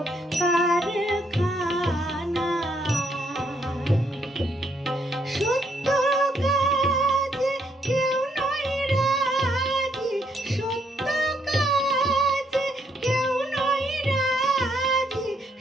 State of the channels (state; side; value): normal; both; correlation 0.72